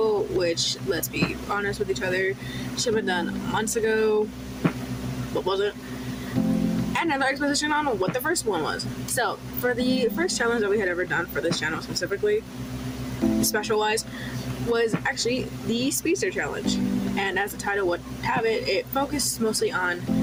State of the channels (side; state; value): both; identical; correlation 1.00